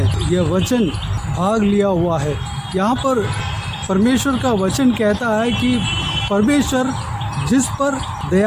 यह वचन भाग लिया हुआ है। यहाँ पर परमेश्वर का वचन कहता है कि परमेश्वर जिस पर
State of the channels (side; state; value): both; identical; correlation 1.00